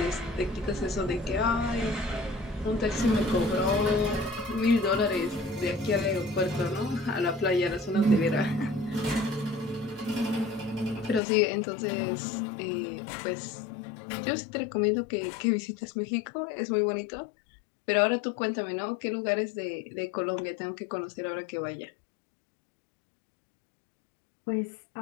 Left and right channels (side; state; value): right; drops out; at 11.2 s